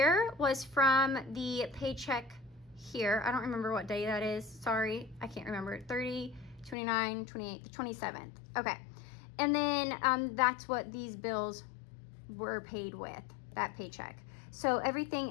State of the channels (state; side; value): drops out; right; at 6.8 s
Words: was from the paycheck here. I don't remember what day that is. Sorry, I can't remember. 30, 29, 28, the 27th. Okay. And then that's what these bills were paid with, that paycheck. So